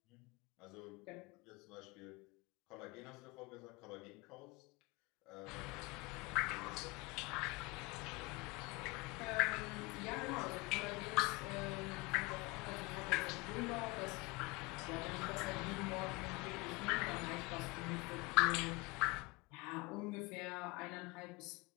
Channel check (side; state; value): right; quieter; 25.0 dB